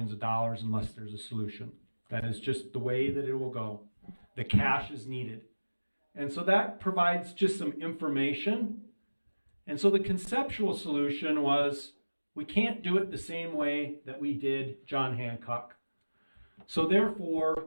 of dollars unless there's a solution. That is just the way that it will go. The cash is needed. And so that provides just some information. And so the conceptual solution was, we can't do it the same way that we did John Hancock. So therefore,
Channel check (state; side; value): inverted; both; correlation -1.00